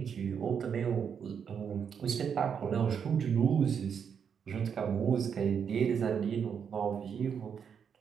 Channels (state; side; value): quieter; left; 7.2 dB